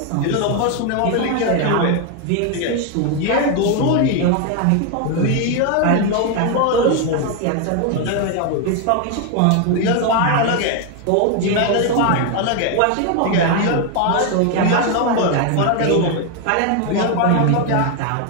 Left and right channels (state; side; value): different; both; correlation 0.01